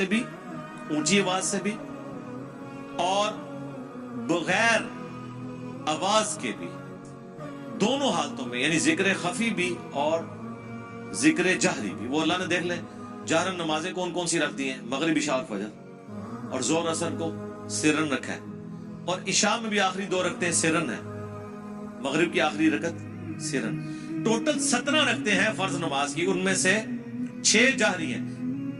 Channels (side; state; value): both; identical; correlation 1.00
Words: بھی، اونچی آواز سے بھی، اور بغیر آواز کے بھی، دونوں حالتوں میں، یعنی ذکر خفی بھی اور ذکر جہری بھی۔ وہ اللہ نے دیکھ لیں جہرن نمازیں کون کون سی رکھ دی ہیں، مغرب عشاء اور فجر، اور زور اثر کو سرن رکھا ہے، اور عشاء میں بھی آخری 2 رکھتے ہیں سرن ہے، مغرب کی آخری رکعت سرن۔ ٹوٹل 17 رکھتے ہیں فرض نماز کی، ان میں سے 6 جہری ہیں،